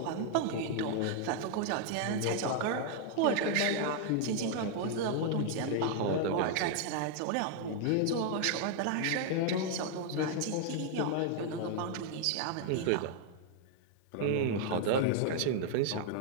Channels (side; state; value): both; different; correlation 0.00